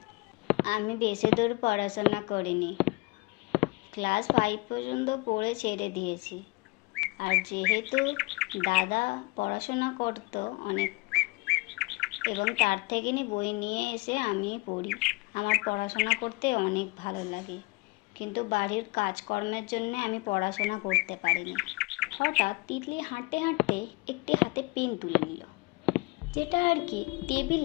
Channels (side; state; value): right; quieter; 25.5 dB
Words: আমি বেশি দূর পড়াশোনা করিনি, ক্লাস 5 পর্যন্ত পড়ে ছেড়ে দিয়েছি। আর যেহেতু দাদা পড়াশোনা করতো অনেক, এবং তার থেকে বই নিয়ে এসে আমি পড়ি। আমার পড়াশোনা করতে অনেক ভালো লাগে, কিন্তু বাড়ির কাজকর্মের জন্য আমি পড়াশোনা করতে পারিনি। হঠাৎ তিতলি হাঁটতে হাঁটতে একটি হাতে পেন তুলে নিল, যেটা আর কি